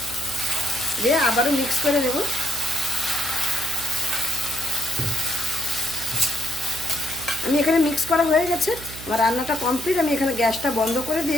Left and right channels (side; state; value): right; noise; hum, 14 dB below the sound